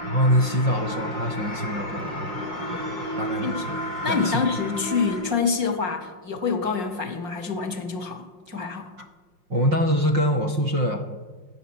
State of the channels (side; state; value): left; late; 5.6 ms